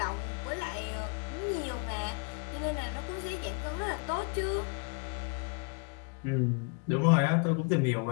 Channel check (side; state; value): right; quieter; 34.3 dB